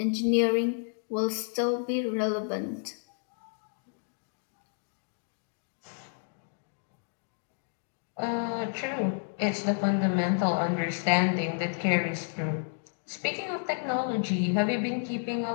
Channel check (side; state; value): right; silent; digital silence